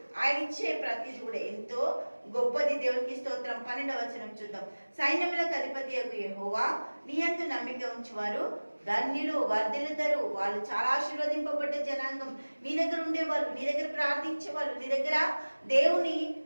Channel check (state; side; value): inverted; both; correlation -1.00